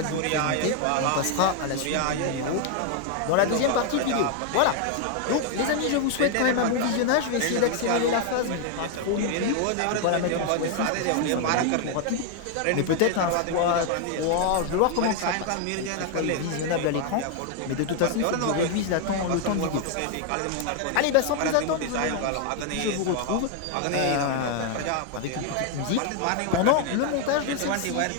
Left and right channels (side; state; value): both; different; correlation 0.00